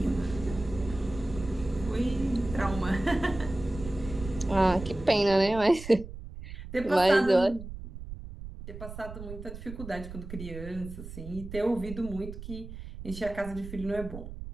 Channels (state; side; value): noise; right; rumble, 11 dB below the sound